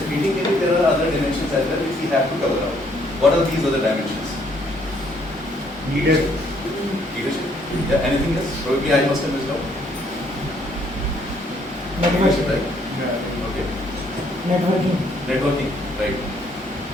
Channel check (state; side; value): normal; both; correlation 0.67